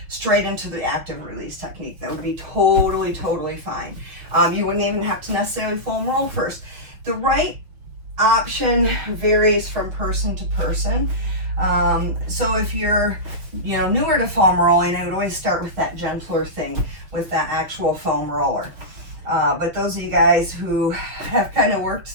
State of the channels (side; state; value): left; late; 6.2 ms